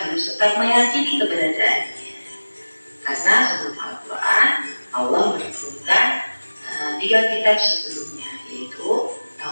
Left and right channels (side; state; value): both; inverted; correlation -1.00